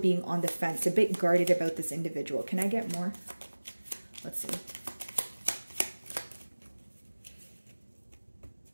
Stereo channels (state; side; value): inverted; both; correlation -1.00